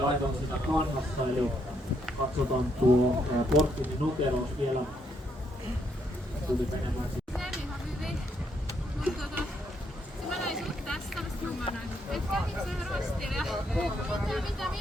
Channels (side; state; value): both; normal; correlation 0.75